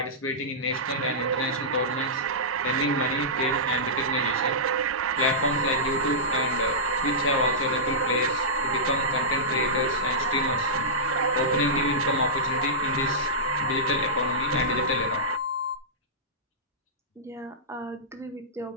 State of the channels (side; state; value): both; normal; correlation -0.16